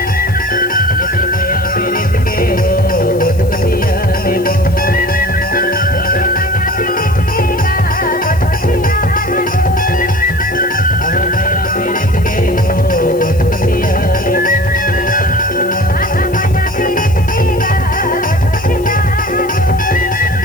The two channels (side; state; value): left; noise; hiss, 21 dB below the sound